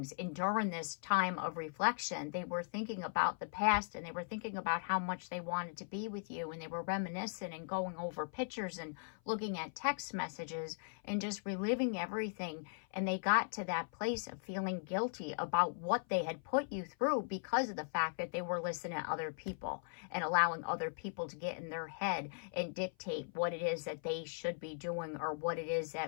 And during this time of reflection, they were thinking about the past, and they were thinking about how much they wanted to be with you, and they were reminiscing and going over pictures and looking at text messages and just reliving everything. And they got to that place of feeling guilty about what they had put you through because of the fact that they were listening to other people and allowing other people to get in their head and dictate what it is that they should be doing or what it is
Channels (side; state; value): right; silent; 52 dB below the other